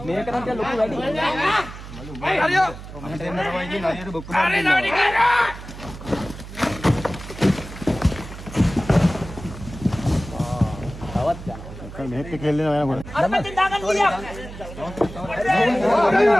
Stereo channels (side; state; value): right; noise; hum, 13 dB below the sound